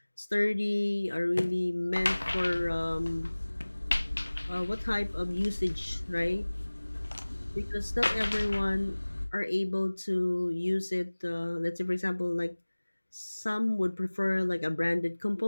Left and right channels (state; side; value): inverted; both; correlation -1.00